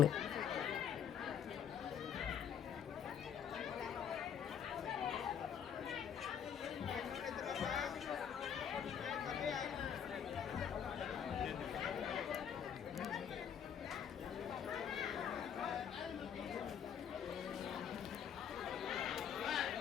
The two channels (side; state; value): right; quieter; 8.3 dB